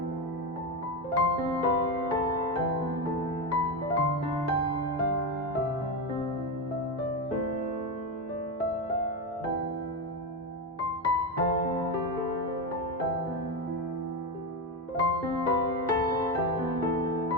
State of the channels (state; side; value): normal; both; correlation 0.14